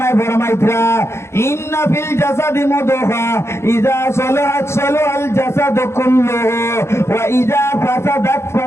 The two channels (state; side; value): late; right; 0.13 ms